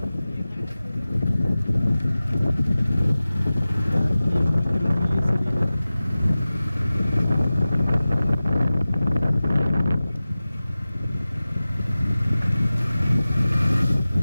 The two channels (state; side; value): inverted; both; correlation -0.96